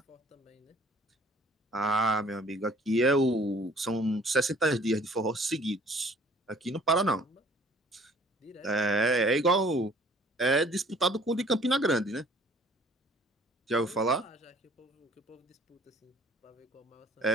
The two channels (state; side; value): normal; both; correlation 0.55